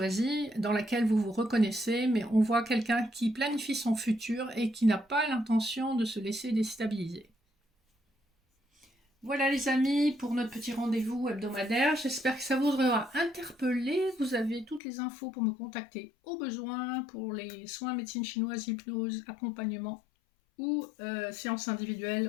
dans laquelle vous vous reconnaissez, mais on voit quelqu'un qui planifie son futur et qui n'a pas l'intention de se laisser déstabiliser. Voilà les amis, pour notre petit rendez-vous hebdomadaire. J'espère que ça vous aura interpellé. Vous avez toutes les infos pour me contacter au besoin pour les soins médecine chinoise, hypnose, accompagnement ou séances individuelles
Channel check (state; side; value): drops out; right; at 14.8 s